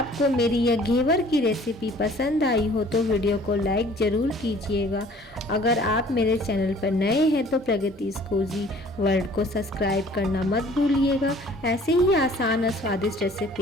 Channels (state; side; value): normal; both; correlation 0.53